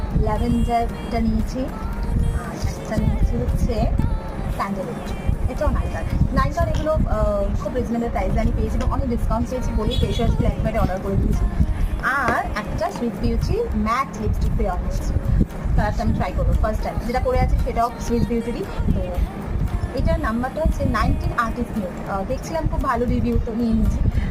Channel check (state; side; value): identical; both; correlation 1.00